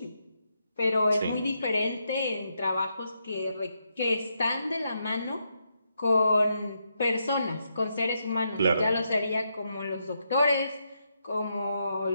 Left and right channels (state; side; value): inverted; both; correlation -0.81